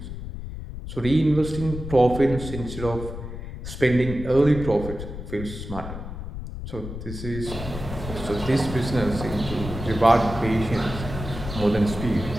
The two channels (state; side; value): noise; left; rumble, 8 dB below the sound